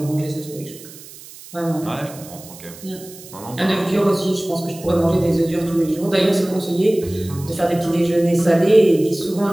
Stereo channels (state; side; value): noise; right; hiss, 18 dB below the sound